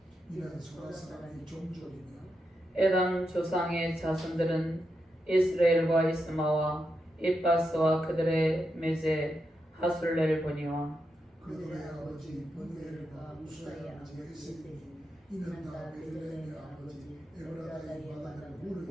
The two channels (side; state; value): both; normal; correlation 0.85